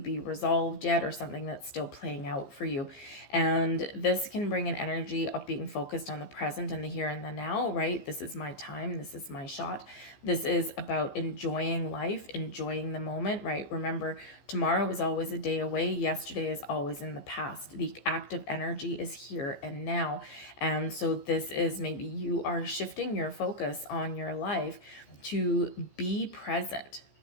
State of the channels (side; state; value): right; late; 14 ms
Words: resolved yet, or something that's still playing out for you. And this can bring an energy of being focused on the present and the here and the now, right? This is my time. This is my shot. This is about enjoying life, enjoying the moment, right? Remember, tomorrow is always a day away. Yesterday is always in the past. The active energy is here and now. And so this is, maybe you are shifting your focus on your life to be present,